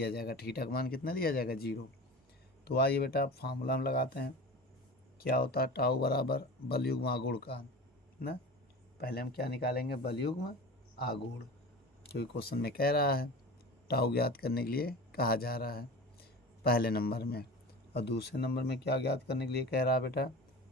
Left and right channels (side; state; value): both; normal; correlation 0.33